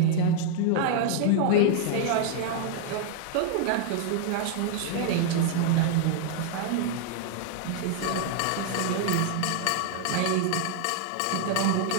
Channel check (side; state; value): both; different; correlation 0.00